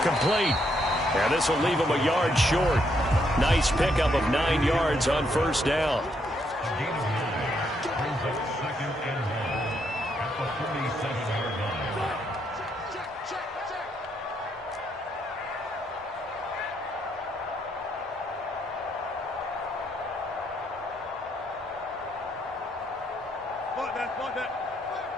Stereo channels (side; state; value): both; normal; correlation 0.75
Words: complete. And this will leave him a yard short. Nice pickup of 9 yards on first down.